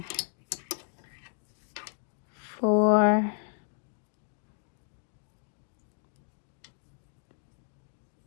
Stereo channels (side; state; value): right; silent; digital silence